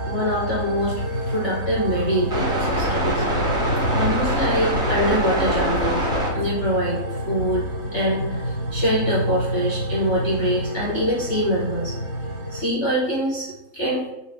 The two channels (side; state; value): right; late; 3.4 ms